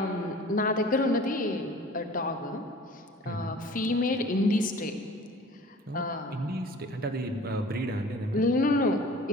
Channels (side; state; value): both; normal; correlation 0.45